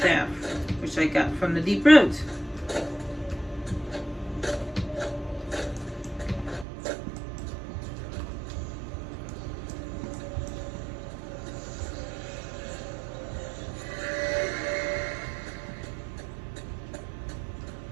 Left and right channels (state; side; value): drops out; left; at 6.7 s